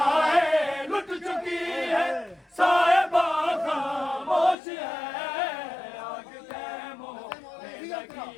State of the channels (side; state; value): right; drops out; at 4.5 s